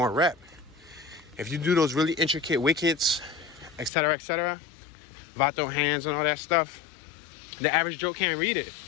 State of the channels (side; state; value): right; drops out; at 3.9 s